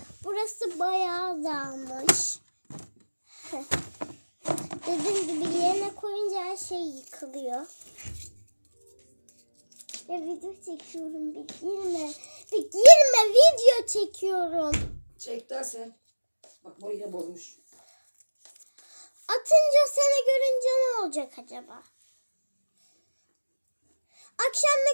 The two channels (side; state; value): both; inverted; correlation -1.00